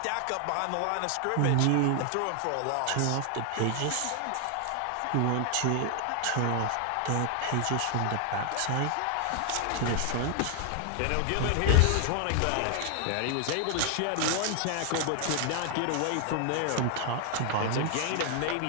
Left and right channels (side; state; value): both; different; correlation 0.00